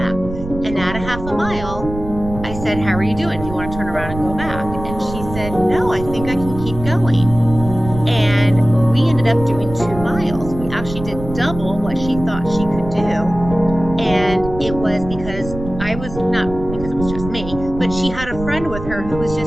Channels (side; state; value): right; noise; rumble, 10 dB below the sound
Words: And at a half a mile, I said, how are you doing? Do you want to turn around and go back? And she said, no, I think I can keep going. And we ended up doing 2 miles. We actually did double what she thought she could do. And it was because not because it was just me, but she had a friend with her who was